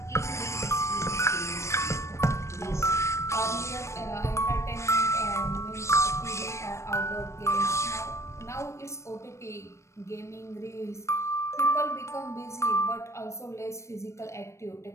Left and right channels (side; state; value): right; late; 0.14 ms